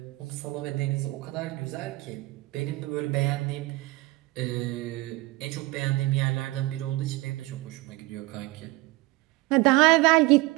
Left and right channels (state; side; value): quieter; left; 21.1 dB